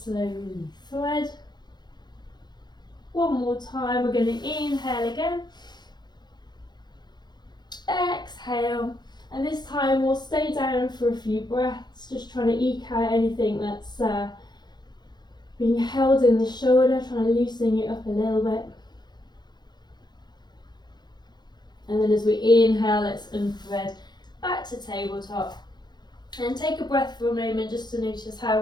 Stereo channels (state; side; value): late; right; 0.21 ms